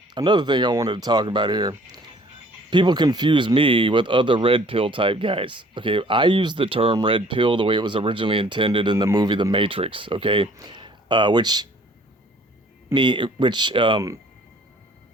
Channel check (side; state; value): both; normal; correlation 0.56